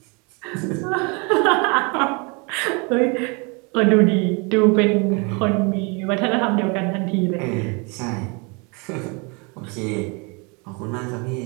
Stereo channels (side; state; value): left; quieter; 31.3 dB